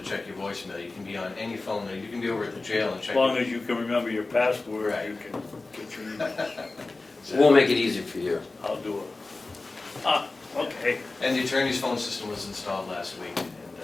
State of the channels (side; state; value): right; quieter; 3.4 dB